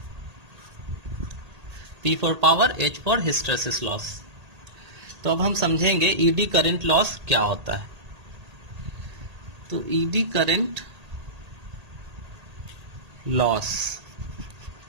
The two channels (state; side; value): late; left; 1.8 ms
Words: P for power, H for hysteresis loss. तो अब हम समझेंगे ईडी करंट लॉस क्या होता है। तो ईडी करंट लॉस,